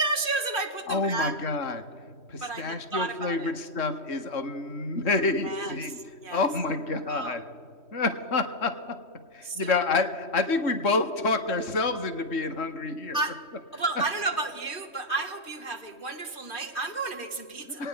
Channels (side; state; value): right; late; 3.1 ms